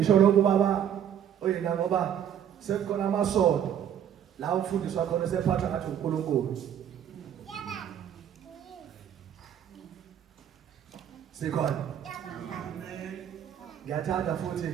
lokho baba oyena ngoba sekukhona amasonto la umfundiswa khona sephatha ngathi uNkulunkulu. Sikhona. Ngiyathanda futhi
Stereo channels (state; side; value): quieter; left; 9.6 dB